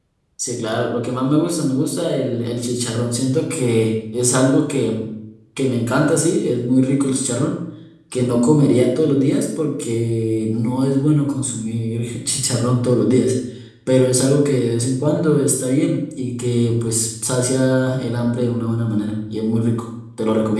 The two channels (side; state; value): both; identical; correlation 1.00